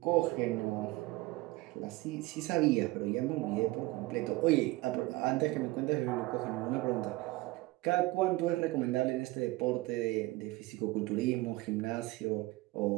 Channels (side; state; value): left; quieter; 20.3 dB